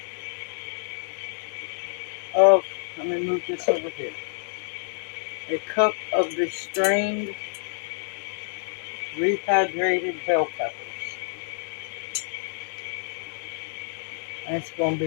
of, let me move this over here. A cup of the strained, rehydrated bell peppers. And it's going to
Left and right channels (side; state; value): right; silent; digital silence